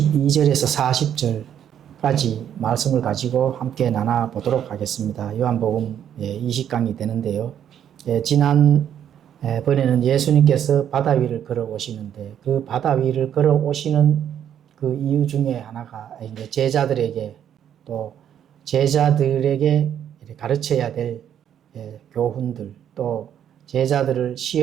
40절까지 말씀을 가지고 함께 나눠보도록 하겠습니다. 요한복음 20강이 되는데요. 지난 번에는 예수님께서 바다 위를 걸어오시는데 그 바다 위를 걸어오시는 그 이유 중에 하나가 이제 제자들에게 또 제자들에게 가르쳐야 될 교훈들 또 제자들을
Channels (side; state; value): left; quieter; 9.6 dB